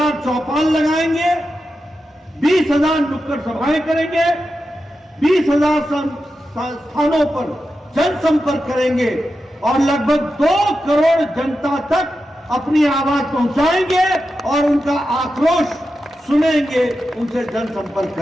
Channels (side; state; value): both; normal; correlation 0.90